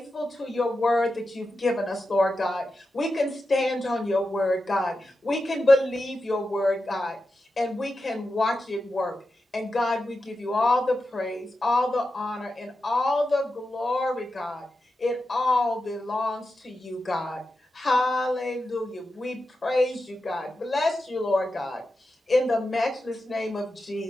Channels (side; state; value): both; normal; correlation 0.90